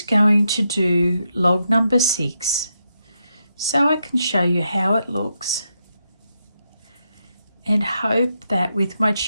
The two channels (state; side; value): inverted; both; correlation -0.82